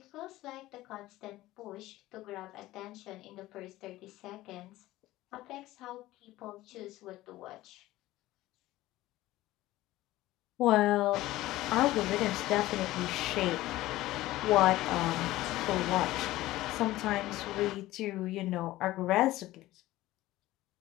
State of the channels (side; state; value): right; quieter; 16.7 dB